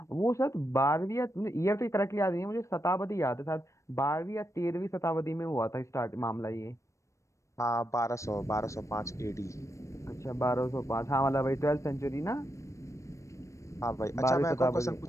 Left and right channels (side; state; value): right; late; 0.15 ms